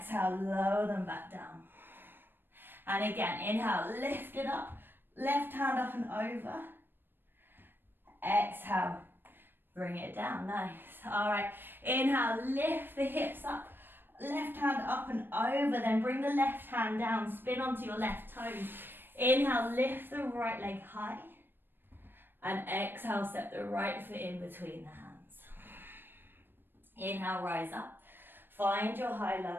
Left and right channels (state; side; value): late; left; 0.097 ms